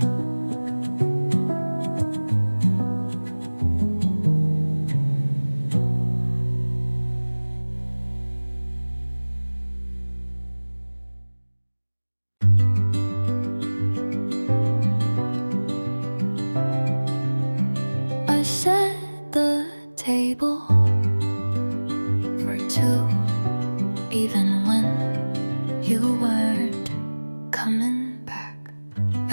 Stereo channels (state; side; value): inverted; both; correlation -1.00